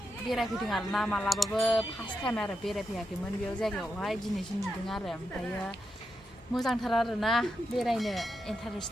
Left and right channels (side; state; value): both; normal; correlation 0.86